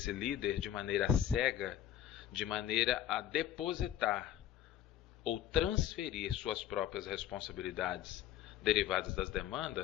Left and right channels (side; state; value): right; quieter; 11.3 dB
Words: líder de maneira cega, de maneira a depositar ou transferir suas próprias responsabilidades derivadas das